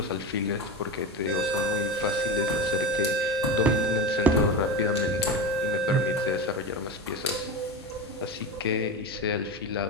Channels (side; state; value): both; normal; correlation 0.22